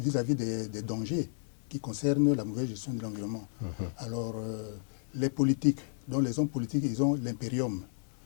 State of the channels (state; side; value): silent; right; digital silence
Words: des dangers qui concernent la mauvaise gestion de l'environnement. Alors les politiques, donc les hommes politiques, ils ont l'impérium.